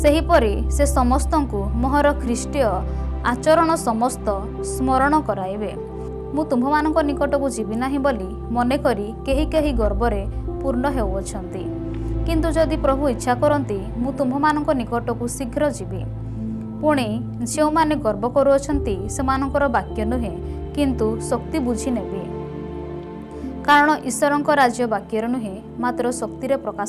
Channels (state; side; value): identical; both; correlation 1.00